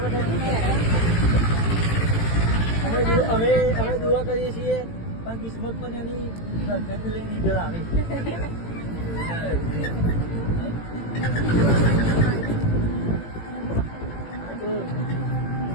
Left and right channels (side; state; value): right; late; 18 ms